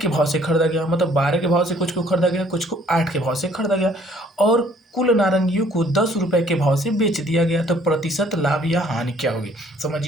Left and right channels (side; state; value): both; normal; correlation 0.60